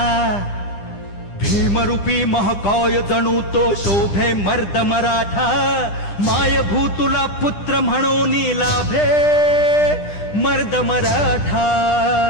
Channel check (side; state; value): right; late; 10 ms